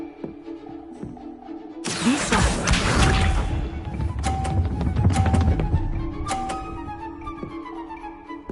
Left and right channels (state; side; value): identical; both; correlation 1.00